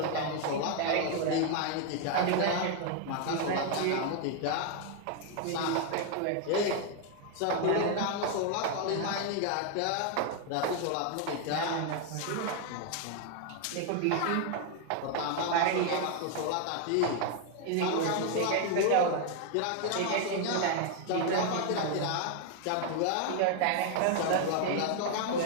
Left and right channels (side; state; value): both; different; correlation 0.00